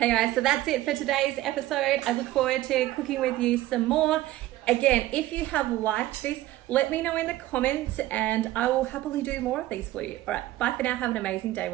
guys, so that's it for today's episode. I look forward to cooking with you some more. Again, if you have liked this, let me know in the comments, and I will happily do more of these for you. All right, bye for now. Have an amazing day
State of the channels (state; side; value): quieter; left; 15.8 dB